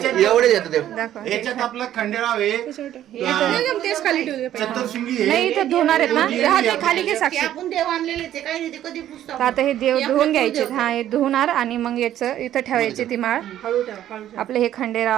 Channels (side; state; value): left; quieter; 11.9 dB